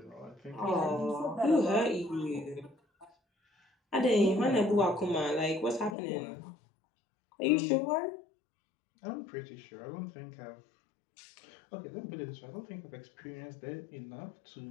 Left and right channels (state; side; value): drops out; right; at 6.0 s